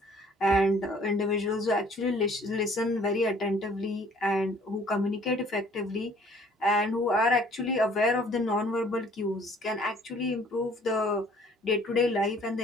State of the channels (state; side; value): normal; both; correlation 0.56